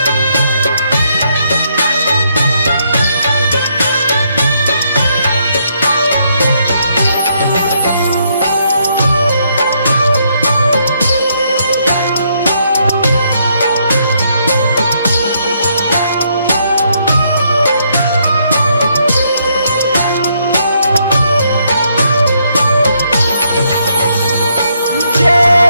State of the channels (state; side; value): inverted; both; correlation -0.74